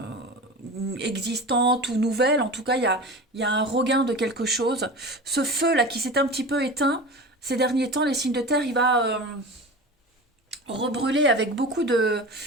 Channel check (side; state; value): both; normal; correlation 0.32